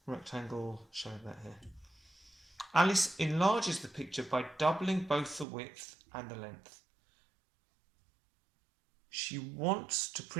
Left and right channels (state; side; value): drops out; left; at 5.5 s